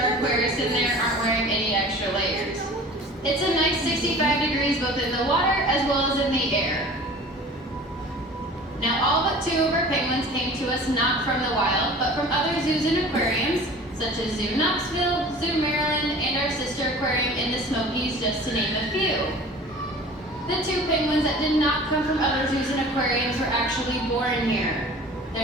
aquarists in there aren't wearing any extra layers. It's a nice 65 degrees both in the water as well as in the air. Now all but 2 of our penguins came to us not from the wild, but from other zoos and aquariums, such as Zoo Knoxville, Zoo Maryland, and our sister aquarium in the Smokies, just to name a few. The 2 penguins that did not come from other zoos and aquariums were actually born here.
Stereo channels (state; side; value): normal; both; correlation 0.43